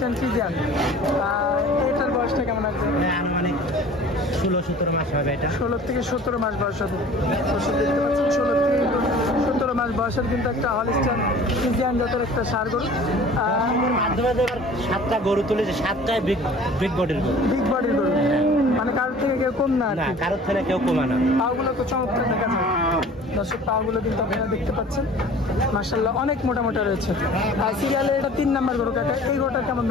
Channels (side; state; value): both; normal; correlation 0.46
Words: ফ্রিজিয়ান। এটার বয়সটা কেমন আছে? আনুমানিক 16-17 মাস হবে। এটা 16 থেকে 17 মাস বয়স হবে। দেখতে পাচ্ছেন 16 থেকে 17 মাস বয়সের কিন্তু একটা হলিস্টাইন ফ্রিজিয়ান জাতের একটা ষাঁড় গরু। মাধ্যমে যে 7টা গরু তুলেছে, 7টাই বিগ বডির গরু। বিগ বডির গরু, মানে কারোর থেকে কেউ কম না। কারোর থেকে কেউ কমা না। পাগুলো তো চমৎকার দেখা যায় দর্শক। পাগুলো কিন্তু আপনারা দেখতে পাচ্ছেন, মাশাআল্লাহ, অনেক মোটা মোটা রয়েছে। আর সিরিয়ালে এটা 3 নম্বর গরু কাকা। এই গরুটার কেমন